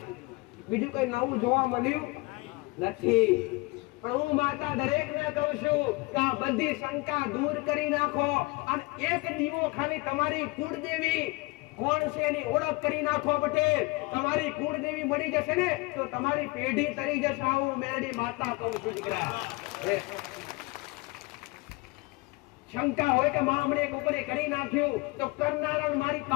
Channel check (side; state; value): right; quieter; 24.4 dB